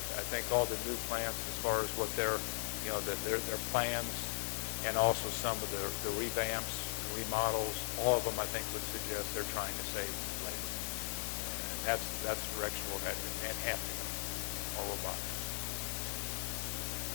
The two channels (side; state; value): right; silent; digital silence